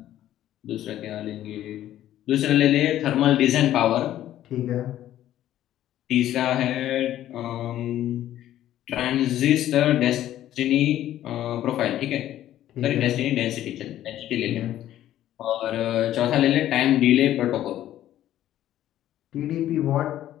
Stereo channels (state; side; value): quieter; right; 12.6 dB